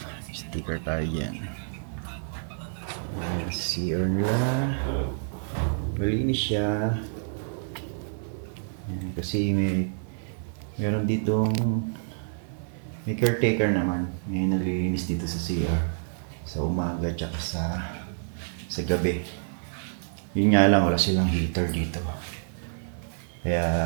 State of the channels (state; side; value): silent; left; 59 dB below the other